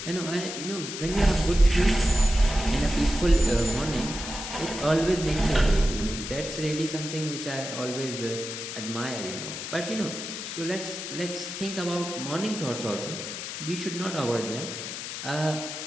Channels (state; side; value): noise; left; hiss, 7 dB below the sound